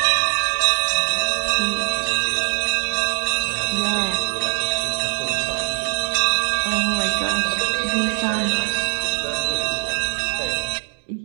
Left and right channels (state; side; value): silent; left; digital silence